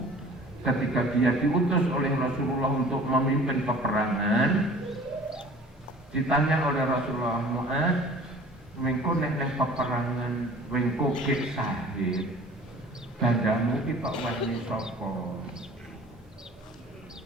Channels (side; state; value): both; normal; correlation 0.47